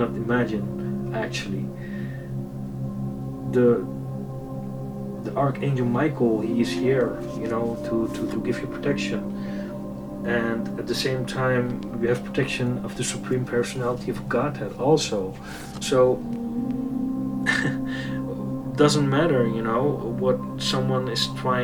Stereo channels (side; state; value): both; identical; correlation 1.00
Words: imagine actually. The Archangel Michael, he is here, to give you protection. And at the same time, we have protection of the Supreme Personality of Godhead also. So doesn't matter, what someone is